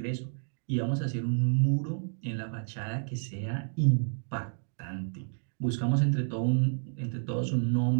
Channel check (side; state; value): left; silent; digital silence